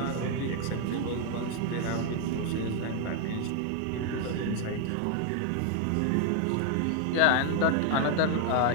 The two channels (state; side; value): different; both; correlation 0.00